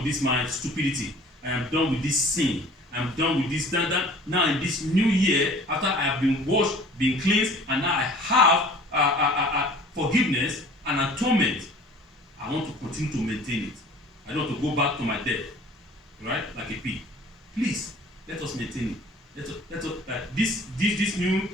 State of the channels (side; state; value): both; normal; correlation 0.48